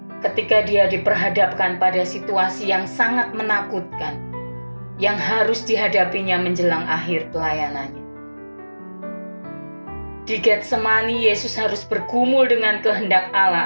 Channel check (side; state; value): both; inverted; correlation -1.00